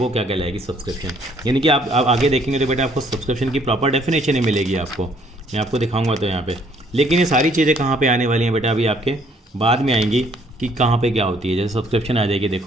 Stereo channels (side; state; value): both; normal; correlation 0.63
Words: क्या कहलाएगी, सब्सक्रिप्शन. यानी कि आप आगे देखेंगे तो बेटा आपको सब्सक्रिप्शन की प्रॉपर डेफिनेशन ही मिलेगी आपको, मैं आपको दिखाऊंगा तो यहाँ पे. लेकिन ये सारी चीज़ें कहाँ पर आने वाली हैं बेटा, अभी आपके बाद में आएंगी कि कहाँ पर क्या होती है. जैसे सब्सक्रिप्शन आ जाएगी,